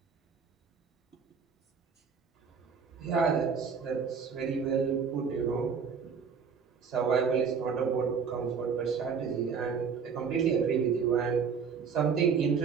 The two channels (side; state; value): left; quieter; 6.2 dB